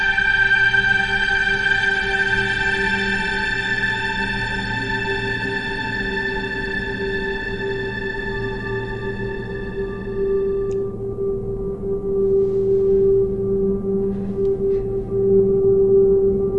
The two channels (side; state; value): both; identical; correlation 1.00